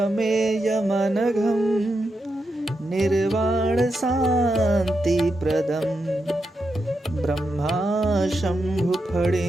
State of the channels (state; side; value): normal; both; correlation 0.86